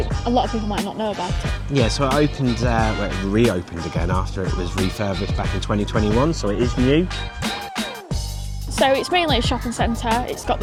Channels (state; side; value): identical; both; correlation 1.00